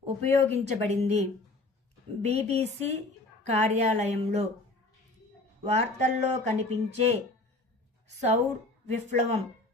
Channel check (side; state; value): right; quieter; 3.1 dB